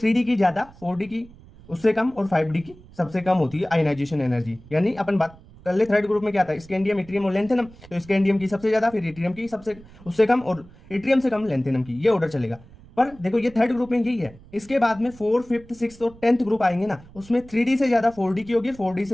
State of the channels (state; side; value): noise; right; rumble, 22 dB below the sound